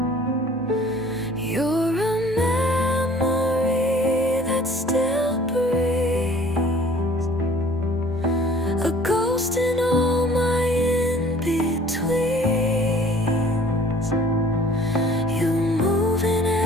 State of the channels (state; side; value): normal; both; correlation 0.52